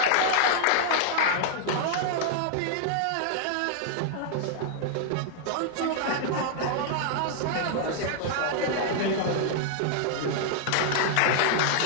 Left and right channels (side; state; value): both; different; correlation -0.01